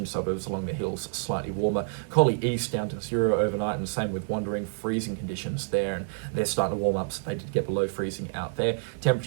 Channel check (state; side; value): silent; left; digital silence